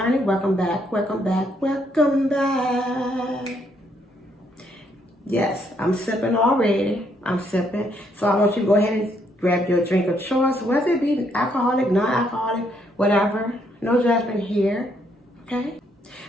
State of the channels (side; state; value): both; normal; correlation 0.72